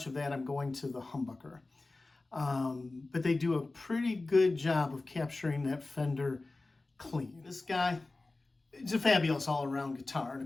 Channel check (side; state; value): right; quieter; 3.2 dB